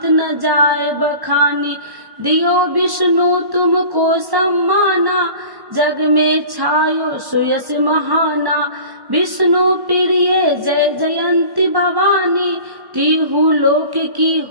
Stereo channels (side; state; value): left; late; 1.1 ms